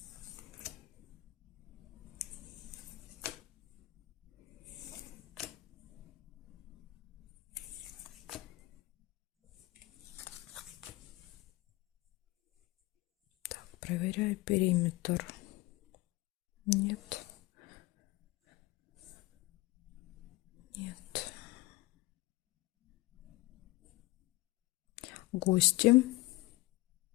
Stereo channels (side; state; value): right; quieter; 20.5 dB